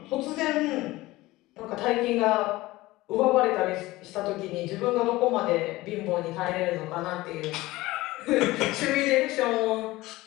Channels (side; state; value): right; quieter; 19.0 dB